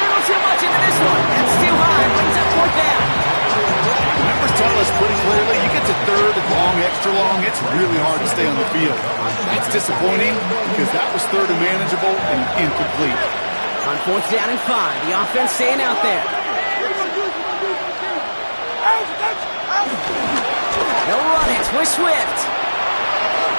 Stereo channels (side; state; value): both; inverted; correlation -1.00